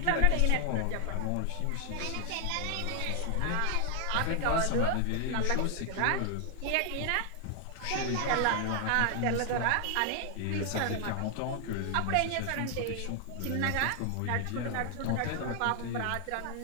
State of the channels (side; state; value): both; different; correlation 0.00